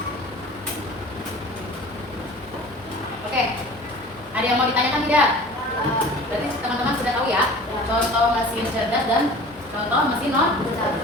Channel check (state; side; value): normal; both; correlation 0.42